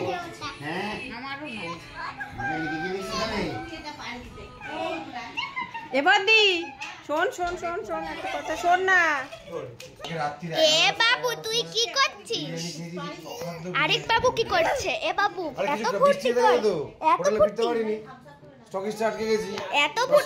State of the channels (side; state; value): both; identical; correlation 1.00